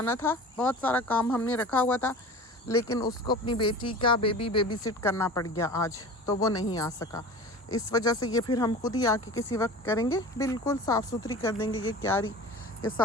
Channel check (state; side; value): normal; both; correlation 0.37